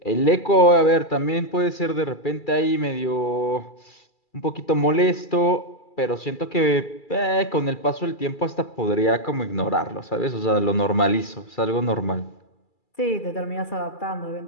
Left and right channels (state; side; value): late; right; 2.3 ms